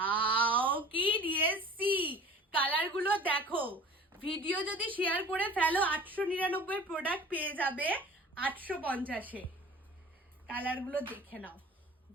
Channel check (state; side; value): normal; both; correlation 0.43